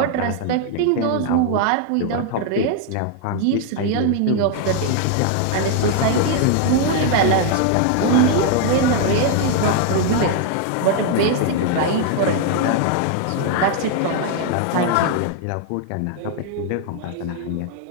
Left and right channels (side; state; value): both; different; correlation 0.00